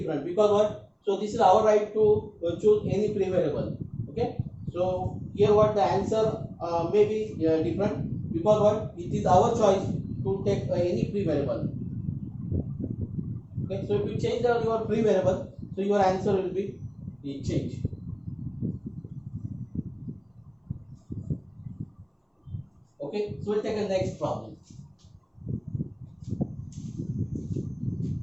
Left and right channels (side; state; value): both; identical; correlation 1.00